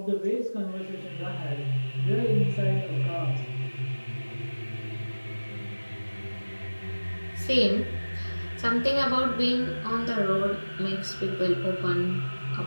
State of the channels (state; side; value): inverted; both; correlation -1.00